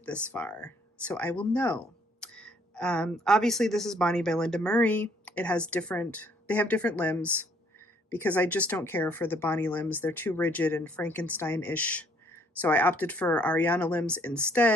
this far, so I will know. Obviously, this is Bonnie by Linda Murray. They have different limbs, because I just don't care for the Bonnie limbs. They're too rigid and Frankenstein-ish. So I opted for Ariana limbs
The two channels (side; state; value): both; normal; correlation 0.64